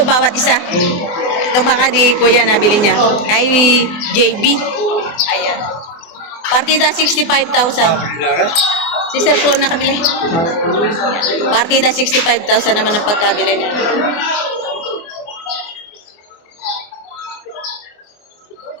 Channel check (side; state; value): right; late; 24 ms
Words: bawat isa. Ito baka ni Kuya nabili niya. Kay JB. Ayan. Partida 65,000. Si Sir po nakabili. Partida 65,000 naman ang pagkabili niya.